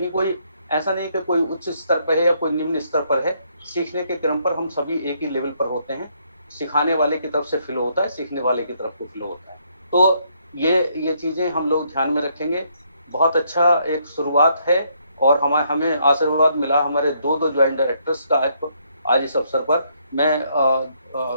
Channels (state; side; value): inverted; both; correlation -0.71